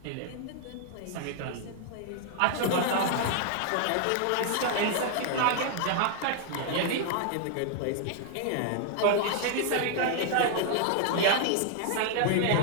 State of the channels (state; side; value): different; both; correlation 0.00